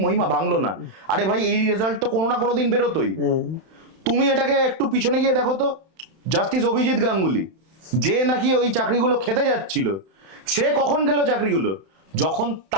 মহিমা, ভাঙলো না। আরে ভাই, এই রেজাল্ট তো কোনো না কোনো দিন বেরোতোই। তুমি এটাকে একটু পিছনে গিয়ে দেখো তো, জাস্টিস অভিজিৎ গাঙ্গুলি, যে নাকি ওই চাকরিগুলো খেতে যাচ্ছিল, সে কখন গেল চাকরিগুলো? যখন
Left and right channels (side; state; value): left; late; 31 ms